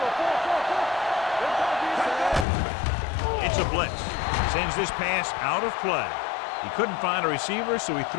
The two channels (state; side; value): drops out; right; at 2.5 s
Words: Go. It's a blitz. Sends this pass out of play. He couldn't find a receiver, so he